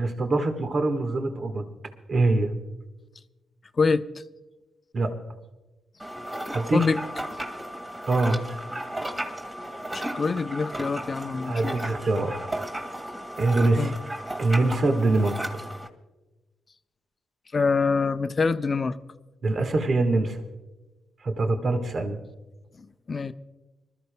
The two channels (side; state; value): both; normal; correlation 0.89